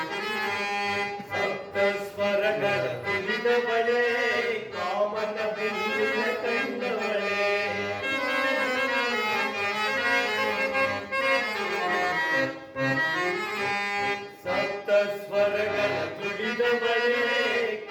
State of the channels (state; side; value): identical; both; correlation 1.00